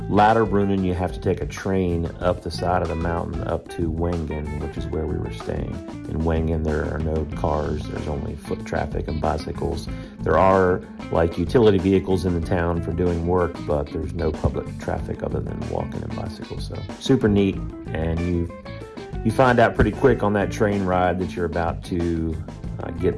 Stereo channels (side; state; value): both; identical; correlation 1.00